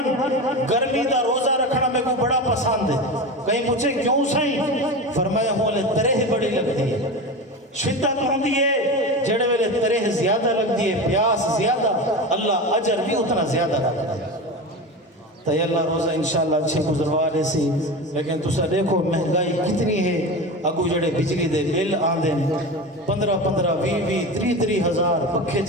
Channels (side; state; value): both; normal; correlation 0.25